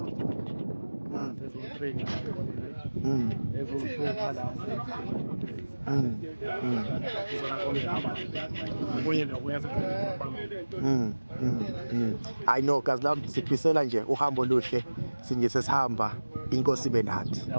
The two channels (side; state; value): both; inverted; correlation -1.00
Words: sezo-3 ezo-2 la I know kazi lami sifisela nje uhambo oluhle sinje sesihamba inkosi ibe nathi.